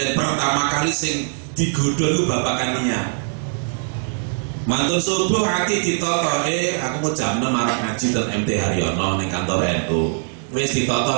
pertama kali sing digodho niku babakan niat. Mantun subuh hati ditata, aku mau jam 6 arep ngaji ten MT Haryono ning kantor NU. Wis ditata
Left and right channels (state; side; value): silent; left; digital silence